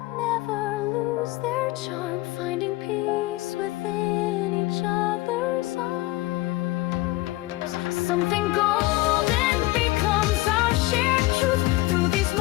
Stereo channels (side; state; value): right; quieter; 19.6 dB